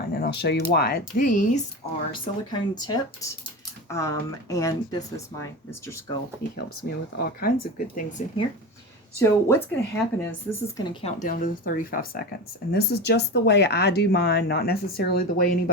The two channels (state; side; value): normal; both; correlation 0.26